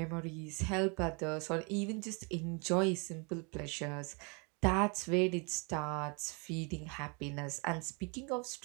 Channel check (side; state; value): left; quieter; 33.0 dB